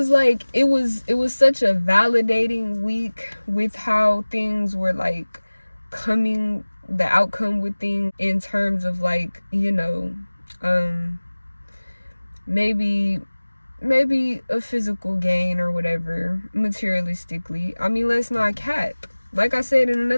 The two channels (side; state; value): both; inverted; correlation -1.00